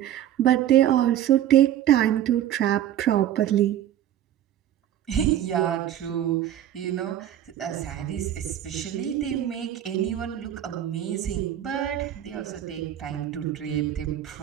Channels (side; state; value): left; quieter; 11.4 dB